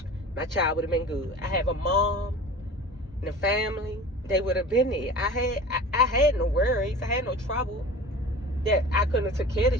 my child would have been good. I have a mom and a family. They would have been there. I had no worries. I had no trouble that I couldn't have took care of the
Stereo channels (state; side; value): normal; both; correlation 0.38